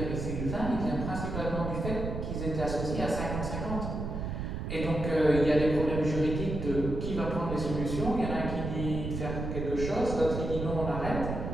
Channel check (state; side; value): noise; right; rumble, 4 dB below the sound